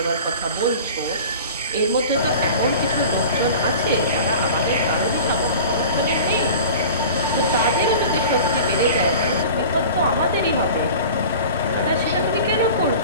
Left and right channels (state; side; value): inverted; both; correlation -0.39